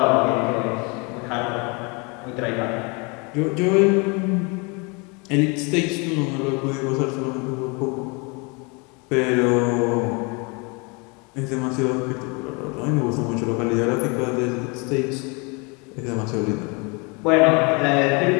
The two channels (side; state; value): right; quieter; 30.6 dB